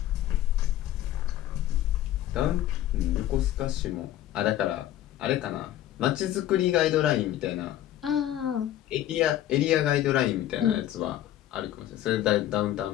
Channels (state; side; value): quieter; right; 12.8 dB